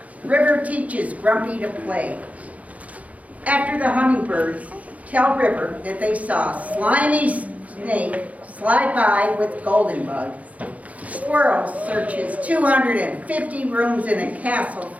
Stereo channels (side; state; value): left; late; 0.069 ms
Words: River teaches Grumpy to play. After the hummingbirds tell River that they saw a slimy snake slide by with golden bugs, Squirrel searches 250 rooms in a castle